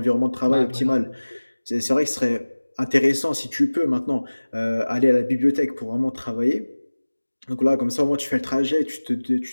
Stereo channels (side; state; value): both; inverted; correlation -1.00